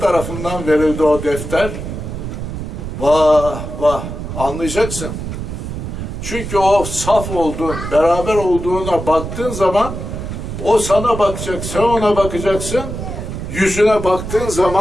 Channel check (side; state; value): right; noise; rumble, 7 dB below the sound